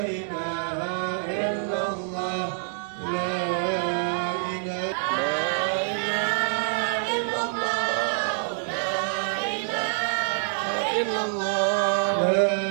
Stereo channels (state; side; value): silent; left; 61 dB below the other